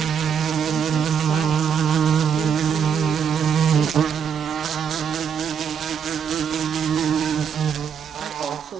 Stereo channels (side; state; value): left; quieter; 7.4 dB